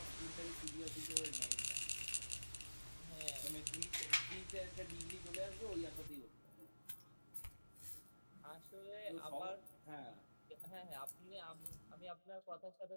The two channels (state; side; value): inverted; both; correlation -1.00